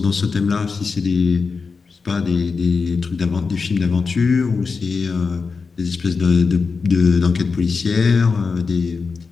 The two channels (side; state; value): right; quieter; 4.8 dB